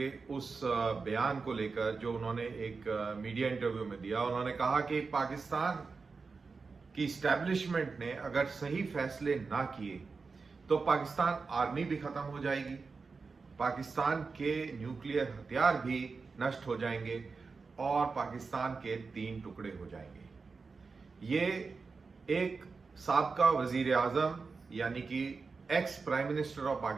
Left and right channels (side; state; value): left; quieter; 4.6 dB